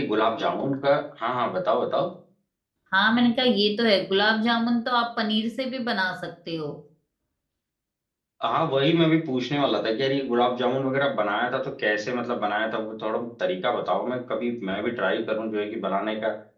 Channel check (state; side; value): identical; both; correlation 1.00